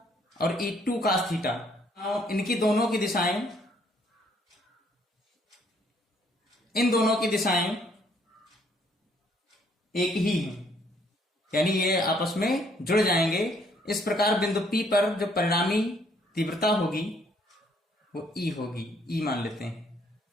और E2 cos थीटा, इनकी दोनों की दिशाएं, इन दोनों की दिशाएं एक ही हैं, यानी ये आपस में जुड़ जाएंगे। इस प्रकार बिंदु P पर जो परिणामी तीव्रता होगी वो E होगी, E मान लेते हैं।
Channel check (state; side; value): normal; both; correlation 0.66